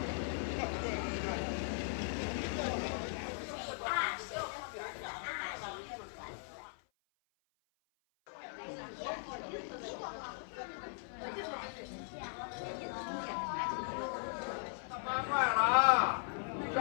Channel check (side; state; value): right; silent; 52 dB below the other